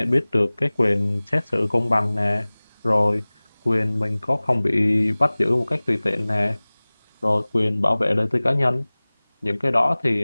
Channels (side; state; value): both; inverted; correlation -1.00